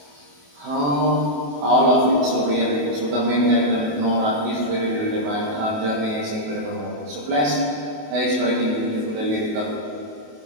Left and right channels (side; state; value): left; late; 28 ms